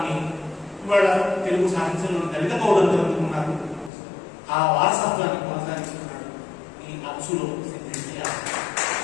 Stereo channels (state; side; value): drops out; right; at 3.9 s